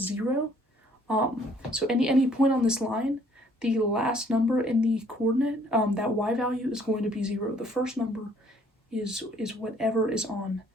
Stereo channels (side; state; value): both; normal; correlation 0.61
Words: 0. So any point on this line, the last number in the coordinate, that y value is going to be 0. The first number is whatever is on